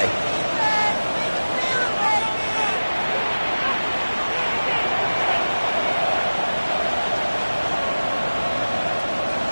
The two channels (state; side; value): inverted; both; correlation -1.00